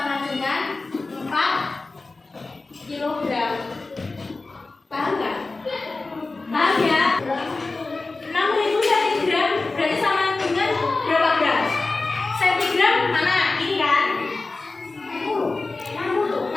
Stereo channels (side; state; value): right; quieter; 3.5 dB